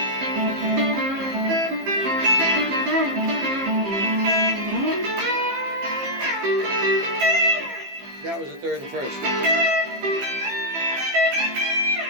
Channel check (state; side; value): late; left; 15 ms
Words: That was the third and first.